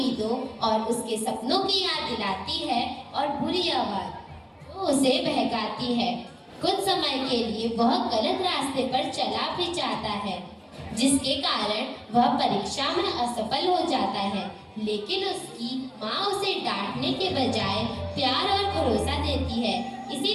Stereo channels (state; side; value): identical; both; correlation 1.00